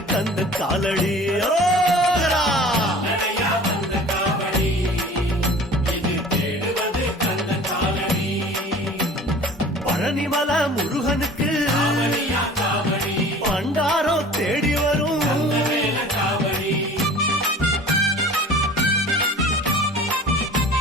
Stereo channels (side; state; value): both; normal; correlation 0.43